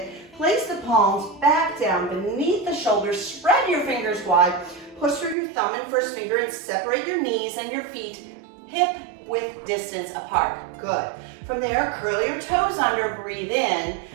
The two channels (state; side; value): drops out; left; at 5.4 s